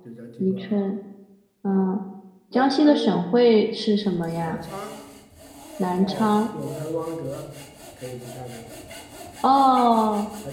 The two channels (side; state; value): both; identical; correlation 1.00